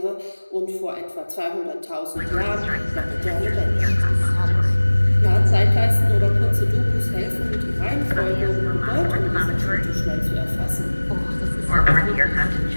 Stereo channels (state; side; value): inverted; both; correlation -1.00